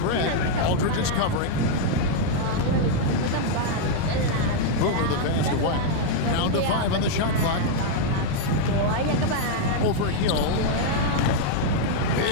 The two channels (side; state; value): both; different; correlation -0.01